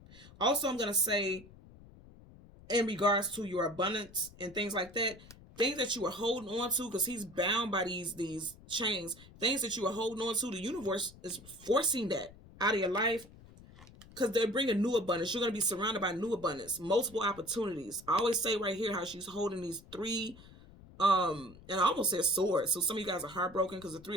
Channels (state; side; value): noise; left; rumble, 21 dB below the sound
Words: Also, I'm going to say, in regards to your abundance and things like that, things that you are holding on to, because he's bound by these chains, things that you are holding on to, the universe is forcing that out of your life, because they're bringing new abundance. You're going to be surrounded by new abundance, multiple opportunities. I always say right here how she's holding these three, and I almost said swords. So some of you guys are heartbroken because the